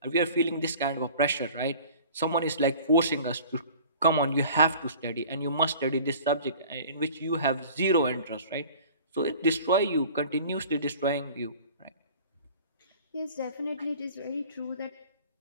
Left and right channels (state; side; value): inverted; both; correlation -0.45